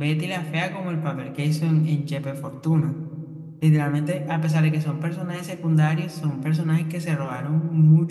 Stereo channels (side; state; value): both; identical; correlation 1.00